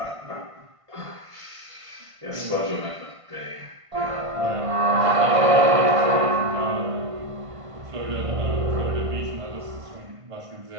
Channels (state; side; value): late; left; 1.5 ms